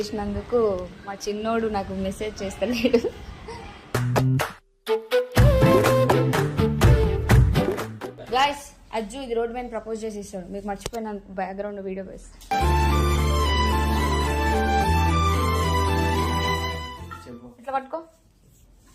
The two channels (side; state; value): both; identical; correlation 1.00